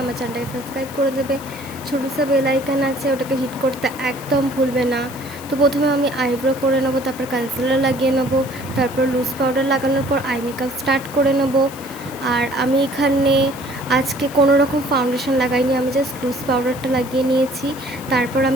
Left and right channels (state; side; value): noise; left; hiss, 17 dB below the sound